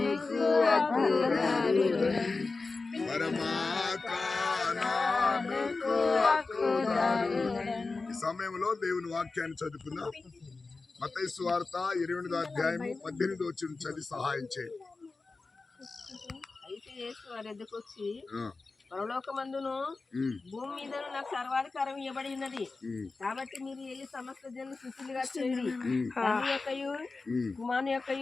హక్కుదారుడని పరమాకానానికి హక్కుదారుడని. ఈ సమయంలో దేవుని వాక్యాన్ని చదువుకుందాం. మత్తయి సువార్త 28వ అధ్యాయము 18వ వచనం చదివి సహాయం చేయండి. అయితే యేసు వారి ఎద్దకు వచ్చి పరలోకమందును భూమి మీదను నాకు సర్వాధికారం ఇవ్వబడి ఉన్నది, కాబట్టి మీరు వెళ్ళి సమస్త జనులు శిష్యులుగా చేయండి. తండ్రి యొక్కయు కుమారుని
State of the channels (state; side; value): quieter; right; 3.9 dB